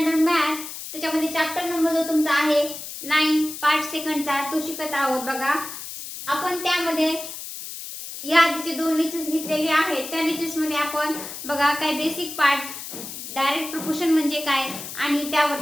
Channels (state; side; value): noise; left; hiss, 9 dB below the sound